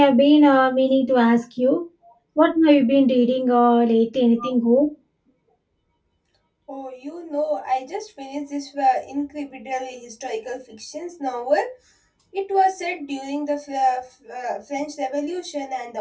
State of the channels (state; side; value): identical; both; correlation 1.00